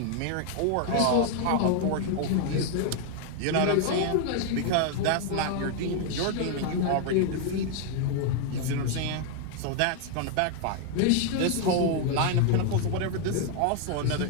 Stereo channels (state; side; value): different; both; correlation 0.00